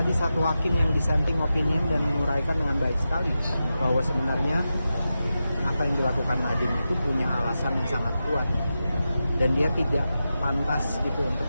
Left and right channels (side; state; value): both; inverted; correlation -0.91